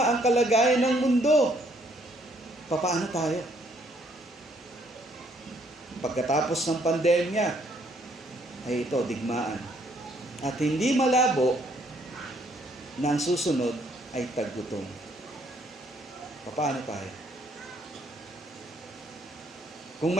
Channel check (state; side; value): normal; both; correlation 0.67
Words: ang kalagayan ng mundo? Paano tayo? Pagkatapos ng pandemya, ay ito, digmaan. At hindi malabo na ang susunod ay taggutom. Paano tayo? Kung